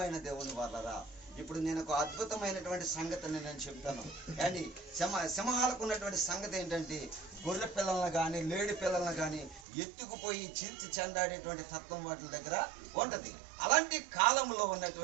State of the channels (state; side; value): drops out; left; at 9.7 s